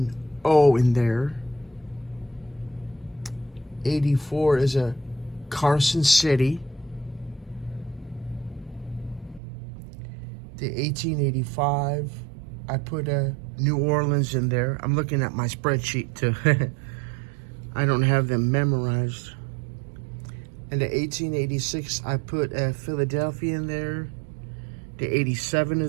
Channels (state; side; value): drops out; left; at 9.4 s